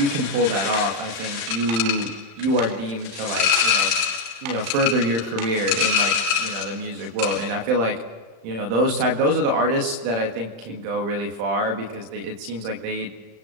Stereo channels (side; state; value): left; late; 35 ms